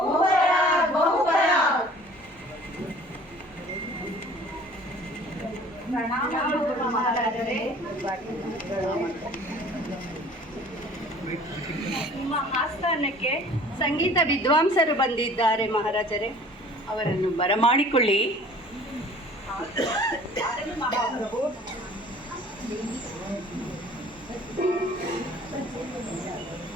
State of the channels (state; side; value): normal; both; correlation 0.49